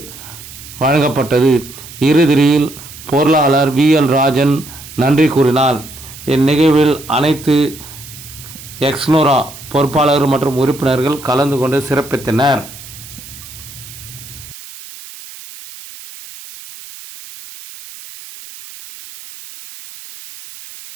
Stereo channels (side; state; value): right; noise; hiss, 16 dB below the sound